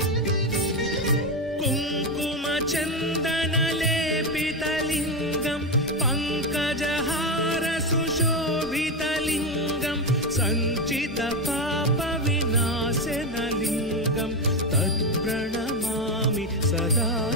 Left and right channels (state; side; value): normal; both; correlation 0.12